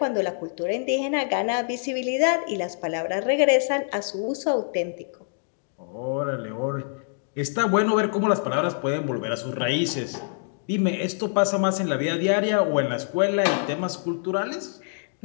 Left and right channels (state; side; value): silent; right; digital silence